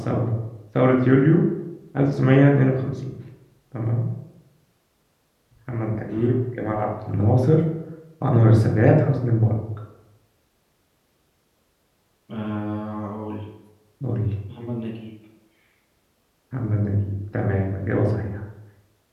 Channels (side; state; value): both; identical; correlation 1.00